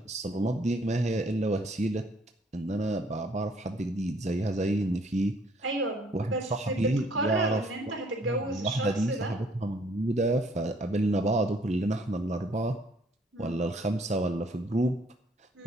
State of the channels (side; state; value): both; normal; correlation 0.63